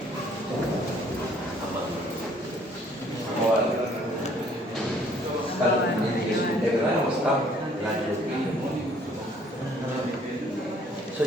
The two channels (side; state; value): both; normal; correlation 0.60